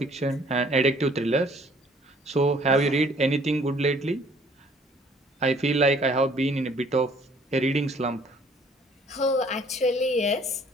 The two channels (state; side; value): normal; both; correlation 0.58